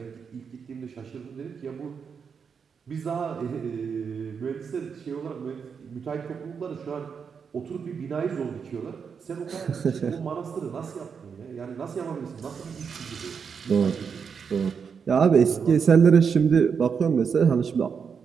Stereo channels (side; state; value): left; quieter; 6.3 dB